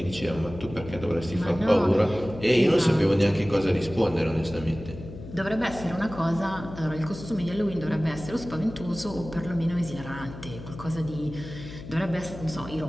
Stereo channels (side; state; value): left; noise; hum, 13 dB below the sound